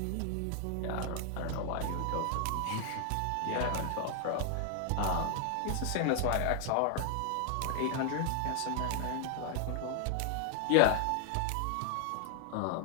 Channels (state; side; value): different; both; correlation 0.00